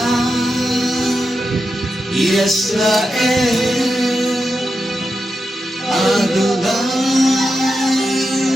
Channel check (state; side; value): normal; both; correlation 0.88